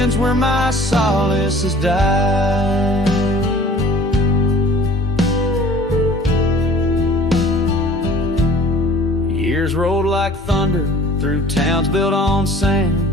where my solace has died. Years rolled like thunder through towns built on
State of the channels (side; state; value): both; normal; correlation 0.48